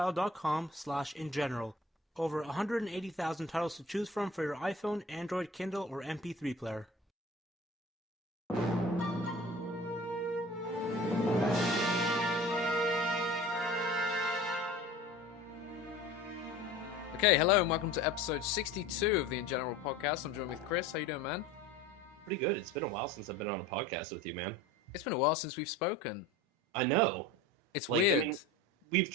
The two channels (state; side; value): normal; both; correlation 0.40